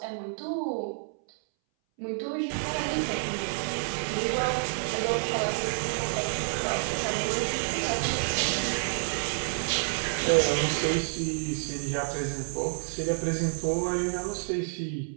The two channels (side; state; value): left; silent; 59 dB below the other